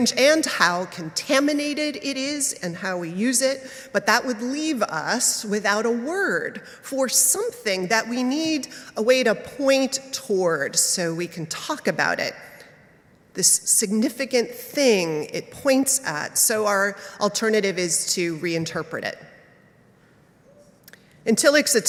and how contaminated it is and how we use it, but that would leave us without a word for something that we need a way to point toward so we can talk about it, this significant thing it points at. So our alternative is to reinterpret it. In Tillich's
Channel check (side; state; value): both; identical; correlation 1.00